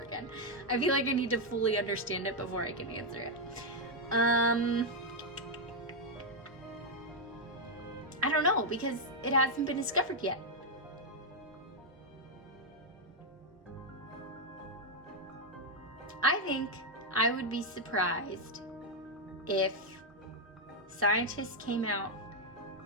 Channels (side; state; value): both; normal; correlation 0.00